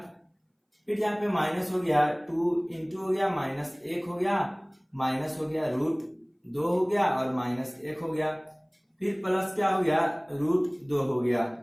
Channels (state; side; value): identical; both; correlation 1.00